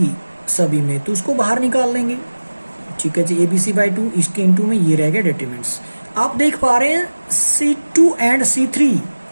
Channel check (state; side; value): inverted; both; correlation -1.00